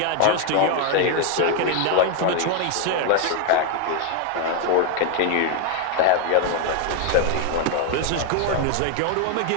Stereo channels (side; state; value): both; different; correlation 0.01